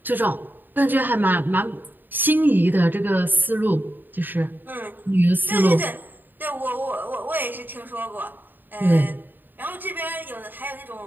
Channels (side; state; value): left; late; 0.091 ms